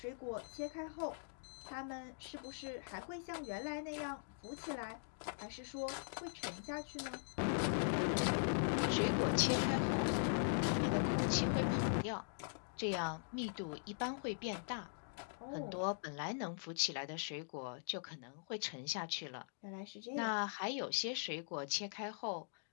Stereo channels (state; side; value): silent; right; digital silence